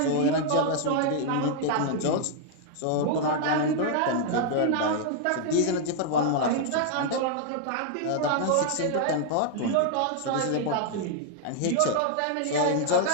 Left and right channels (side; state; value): both; different; correlation 0.00